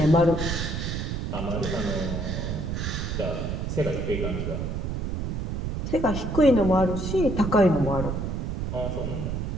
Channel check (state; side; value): noise; right; rumble, 2 dB below the sound